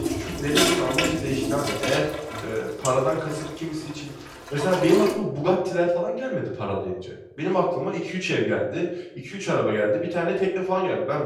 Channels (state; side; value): identical; both; correlation 1.00